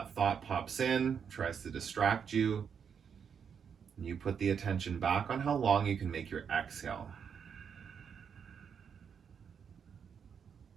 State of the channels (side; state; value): left; quieter; 7.1 dB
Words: thought pops in, tries to distract you. And you put the attention back on how long you can make your exhale.